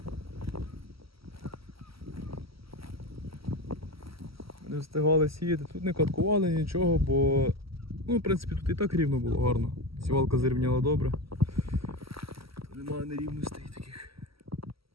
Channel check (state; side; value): late; left; 0.75 ms